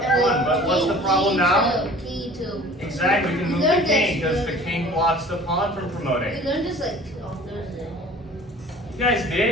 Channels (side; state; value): both; normal; correlation 0.46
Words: pawn. But what's the problem now? King 2. Exactly, we can move the king because the king blocks the pawn from promoting. We learned this like on Thursday. You guys